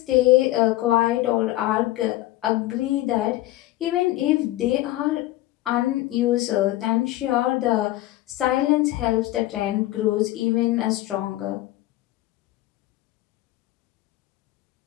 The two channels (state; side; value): quieter; right; 16.4 dB